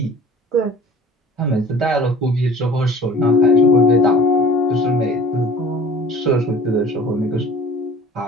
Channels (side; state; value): both; normal; correlation 0.45